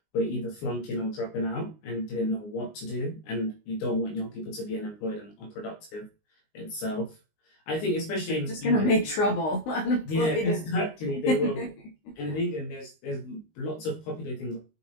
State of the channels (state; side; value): late; right; 19 ms